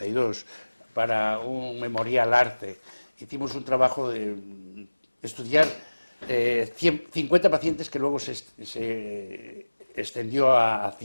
para un memorial arte. Hicimos un trabajo de estudiar 50 pacientes que luego se extendió a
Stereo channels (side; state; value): both; inverted; correlation -1.00